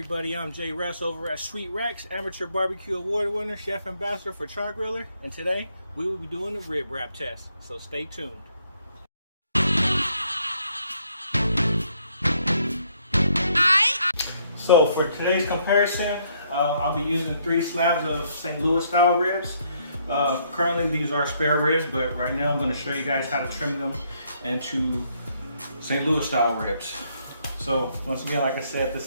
I'm Jay Russ over at Sweet Rex, Amateur Barbecue Award winner, Chef Ambassador for Char Griller, and today we will be doing a rib wrap test, so stay tuned. So for today's comparison, I'll be using 3 slabs of St. Louis style ribs. Currently these are spare ribs, but right now I'm going to show you guys how to trim them into St. Louis style ribs. So once again, like I said,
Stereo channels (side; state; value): both; inverted; correlation -0.69